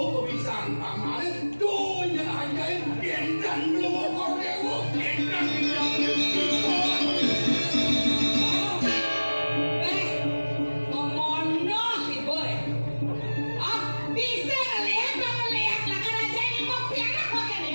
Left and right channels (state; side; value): inverted; both; correlation -1.00